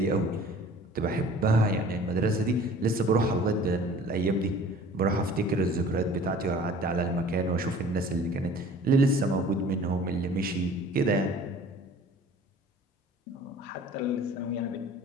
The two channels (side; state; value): both; normal; correlation 0.47